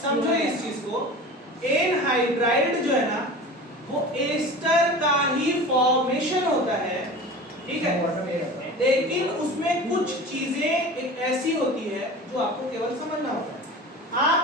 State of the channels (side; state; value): both; normal; correlation 0.35